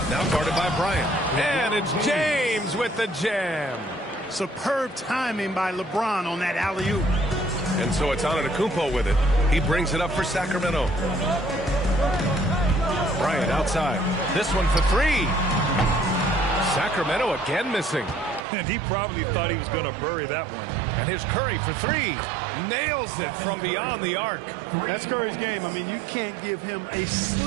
Now guarded by Bryant. And it's James with the jam. Superb timing by LeBron on that alley-oop. And so it's Antetokounmpo with it. He brings it up for Sacramento. Bryant outside. This one for 3. Sacramento again missing. And he probably thought he was going to bury that one. And here's Curry for 3. Nails it from beyond the arc. That's Curry's game. I mean, you can't give him a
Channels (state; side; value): drops out; left; at 18.4 s